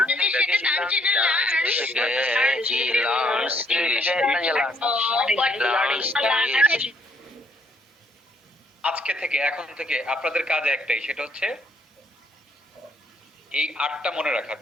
আজকে থেকে, এখন থেকে আপনাদের কাজ একটাই, সেটা হচ্ছে এই 8টা মনে রাখা,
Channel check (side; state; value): both; normal; correlation 0.68